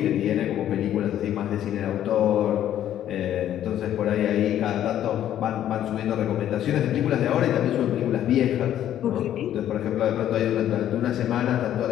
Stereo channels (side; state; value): right; quieter; 11.3 dB